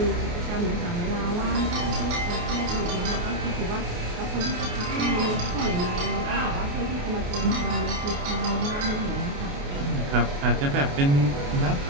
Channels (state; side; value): late; left; 28 ms